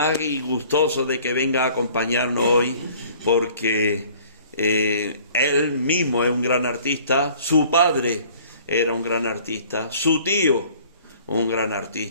y gustoso de que venga a acompañarnos hoy, porque él mismo es un gran artista, su padre era un gran artista, su tío un gran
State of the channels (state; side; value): inverted; both; correlation -0.52